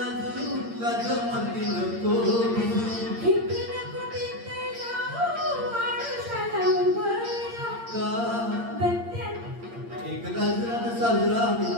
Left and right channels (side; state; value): left; late; 8.7 ms